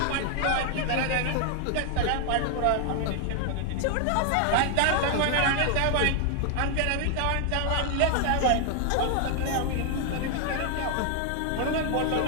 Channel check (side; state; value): both; different; correlation 0.00